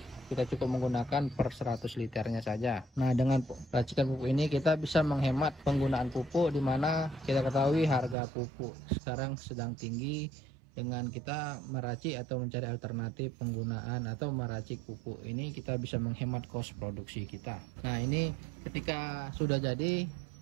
Kita cukup menggunakan per 100 liternya saja. Nah, dengan racikan pupuk ini kita bisa menghemat penggunaan pupuk, di mana kita ketahui harga pupuk sekarang sedang tinggi. Dengan kita meracik atau mencari alternatif penggunaan atau meracik pupuk ini, kita bisa menghemat kos produksi kita. Nah, ini ketika sudah jadi,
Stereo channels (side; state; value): left; drops out; at 8.2 s